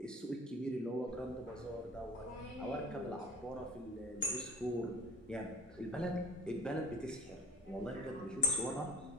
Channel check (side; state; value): both; normal; correlation 0.44